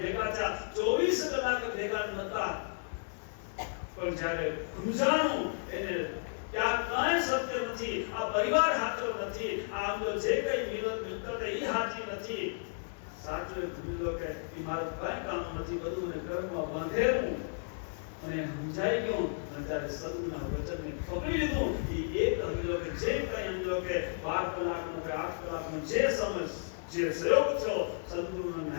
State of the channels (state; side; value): silent; right; digital silence